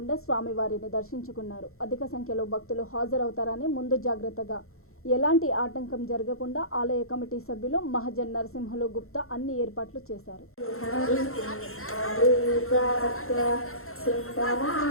స్వామివారిని దర్శించుకున్నారు. అధిక సంఖ్యలో భక్తులు హాజరవుతారని ముందు జాగ్రత్తగా ఎలాంటి ఆటంకం జరగకుండా ఆలయ కమిటీ సభ్యులు మహజన్ నరసింహులు గుప్తా అన్ని ఏర్పాట్లు చేశారు.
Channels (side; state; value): right; late; 0.62 ms